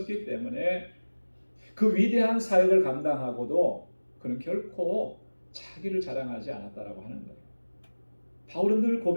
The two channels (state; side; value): inverted; both; correlation -1.00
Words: 때문에 그 위대한 사역을 감당하고도 그는 결코 자기를 자랑하지 않았다라고 하는 거예요. 바울은 늘